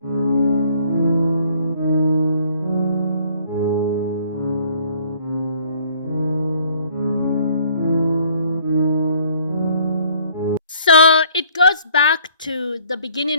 So it goes back to the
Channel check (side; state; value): both; inverted; correlation -0.59